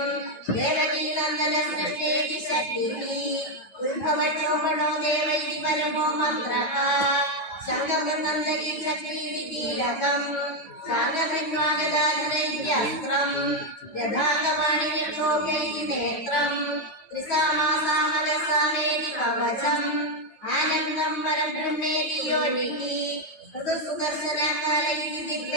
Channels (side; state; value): right; late; 9.3 ms